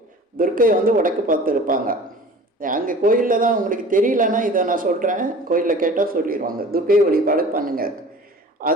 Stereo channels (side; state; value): both; normal; correlation 0.43